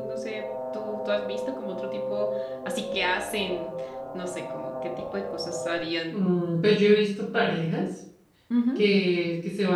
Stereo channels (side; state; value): both; identical; correlation 1.00